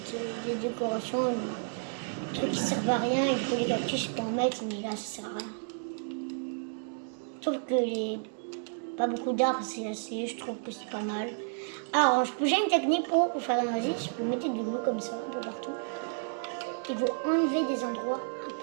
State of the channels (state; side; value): silent; left; digital silence